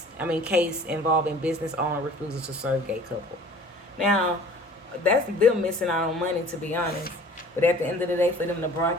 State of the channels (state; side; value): normal; both; correlation 0.48